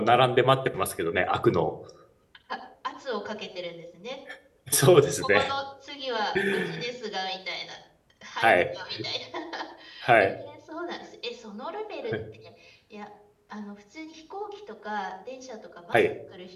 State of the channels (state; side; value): identical; both; correlation 1.00